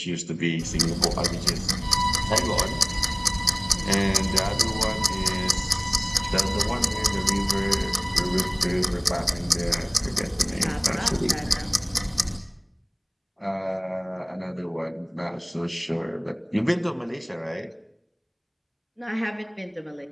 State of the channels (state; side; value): identical; both; correlation 1.00